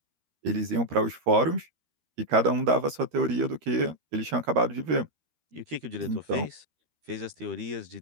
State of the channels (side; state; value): left; late; 13 ms